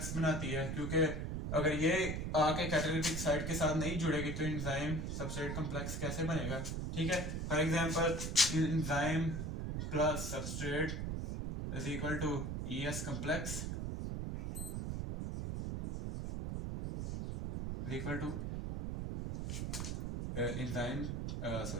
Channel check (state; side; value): noise; right; rumble, 3 dB below the sound